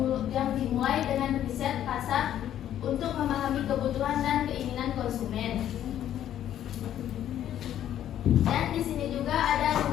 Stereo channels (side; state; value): right; quieter; 11.1 dB